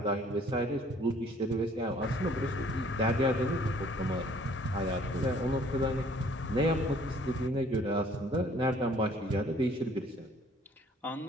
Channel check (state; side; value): normal; both; correlation 0.58